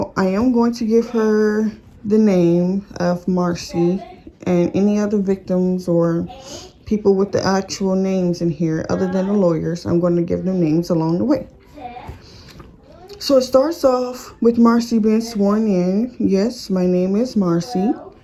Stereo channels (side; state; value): both; identical; correlation 1.00